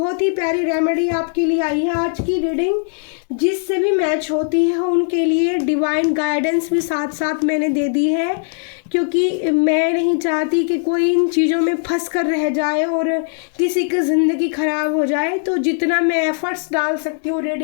ही प्यारी रेमेडी आपके लिए आई है। आज की रीडिंग जिससे भी मैच होती है उनके लिए डिवाइन गाइडेंस भी साथ साथ मैंने दे दी है, क्योंकि मैं नहीं चाहती कि कोई इन चीज़ों में फंस कर रह जाए और किसी की ज़िंदगी ख़राब हो जाए। तो जितना मैं एफर्ट्स डाल सकती हूँ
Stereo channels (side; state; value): right; silent; digital silence